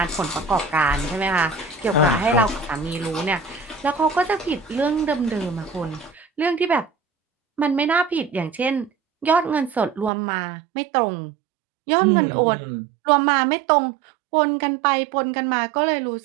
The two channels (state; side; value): drops out; left; at 10.1 s